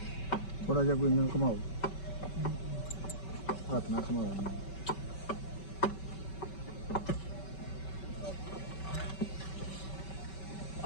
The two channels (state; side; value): late; right; 5.2 ms